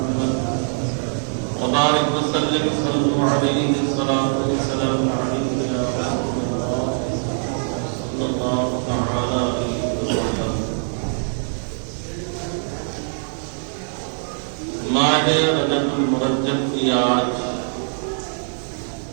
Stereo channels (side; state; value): left; silent; 64 dB below the other